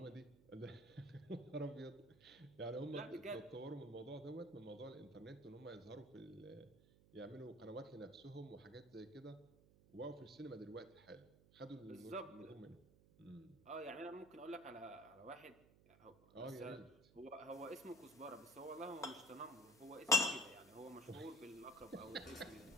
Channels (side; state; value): right; noise; hum, 23 dB below the sound